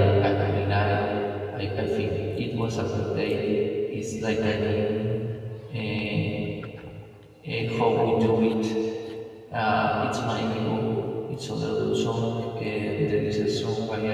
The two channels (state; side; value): identical; both; correlation 1.00